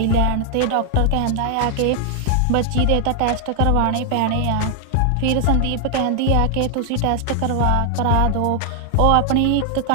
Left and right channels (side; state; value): both; different; correlation 0.00